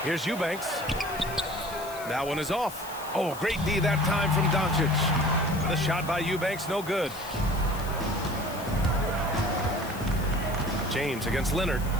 Here's Eubanks. That one is off. Oh, great D that time from Doncic. The shot by Eubanks, no good. James against Leonard.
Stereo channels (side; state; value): left; noise; hiss, 15 dB below the sound